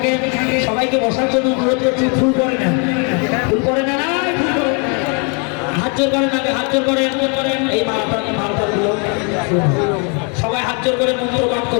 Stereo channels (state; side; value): quieter; right; 36.2 dB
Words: সবাইকে বসার জন্য অনুরোধ করছি। ফুল করে নেন, ফুল করে নেন, ফুল করে হাত জোর করেন, আগে হাত জোর করেন। এই মালটা গুলো সবাই হাত জোর করে মন্ত্র পাঠ